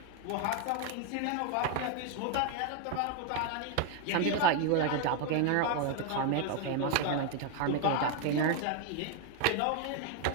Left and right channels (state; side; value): different; both; correlation 0.01